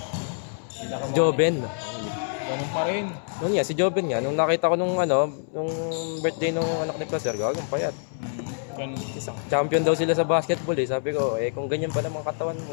Joben. Ganun pa rin. Noon nga, si Joben nga, nung nakita ko nung ano, nung birthday nung anak ni Placer, gagang payat. Ganun. Champion daw sila sa basketball eh. Sabi ko, kung ganyan pa naman katawan mo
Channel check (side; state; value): right; silent; 61 dB below the other